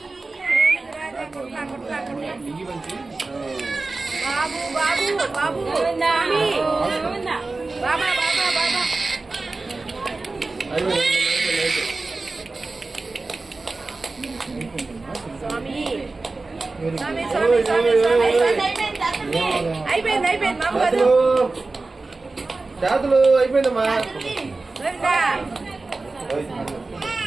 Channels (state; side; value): quieter; left; 3.5 dB